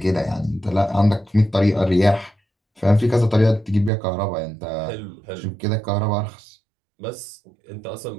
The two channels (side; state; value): left; drops out; at 3.9 s